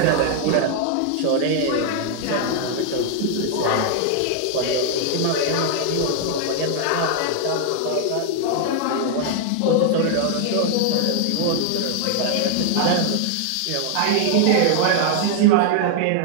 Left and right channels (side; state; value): both; different; correlation 0.00